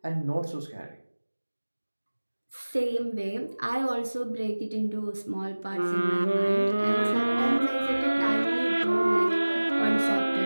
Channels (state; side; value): inverted; both; correlation -1.00